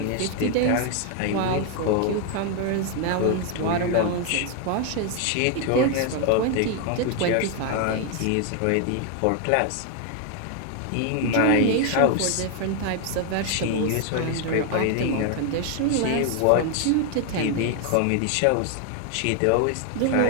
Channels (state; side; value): different; both; correlation 0.01